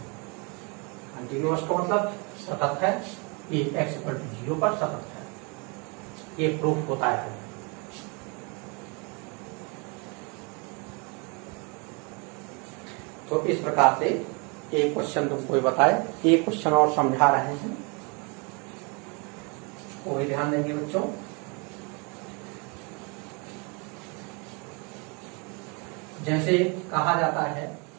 कंटिन्यूअस का मतलब सतत है, ये x इक्वल टू जीरो पर सतत है, ये प्रूफ होता है। तो इस प्रकार से एक क्वेश्चन तुमको बताए, एक क्वेश्चन और समझा रहे हैं, कोई ध्यान देंगे बच्चों। जैसे कहा जाता है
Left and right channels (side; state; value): left; quieter; 32.1 dB